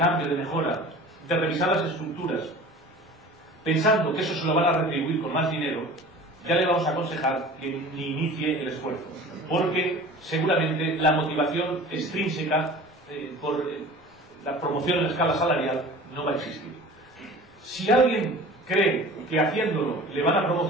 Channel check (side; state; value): both; normal; correlation 0.41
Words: de mejora, de revisar las estructuras, pensando que eso se lo van a retribuir con más dinero, ya le vamos a aconsejar que ni inicie el esfuerzo, porque seguramente la motivación extrínseca por la promoción en escala salarial no va a existir. Si alguien cree que haciéndolo le van a